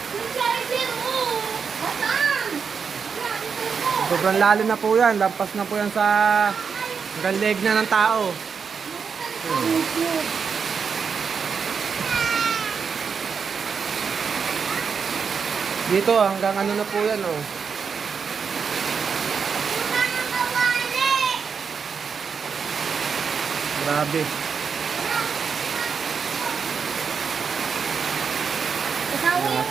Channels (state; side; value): quieter; left; 6.1 dB